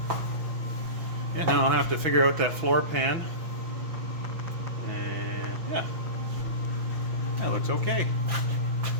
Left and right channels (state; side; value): late; left; 6.1 ms